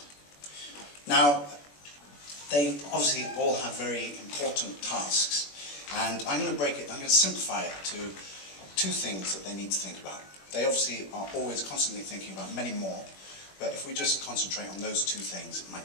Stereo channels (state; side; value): late; right; 21 ms